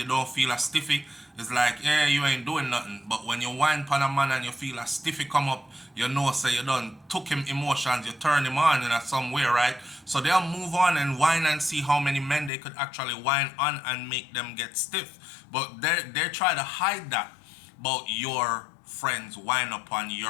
don't feel a stiffy, it's like, yeah, you ain't doing nothing. But when you whine upon a man and you feel a stiffy come up, you know, say you done took him emotions, you turn him on in a some way, right? So they'll move on and whine and see how many men they could actually whine on and make them get stiff. But they try to hide that about your friends whine upon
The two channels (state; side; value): drops out; right; at 12.5 s